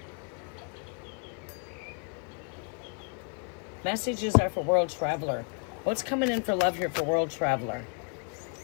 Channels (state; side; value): quieter; right; 38.5 dB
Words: Messages are for World Traveler. What's coming in for love here for World Traveler?